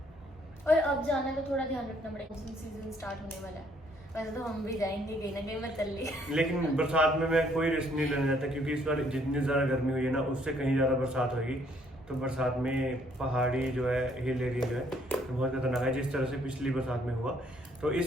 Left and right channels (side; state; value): both; normal; correlation 0.66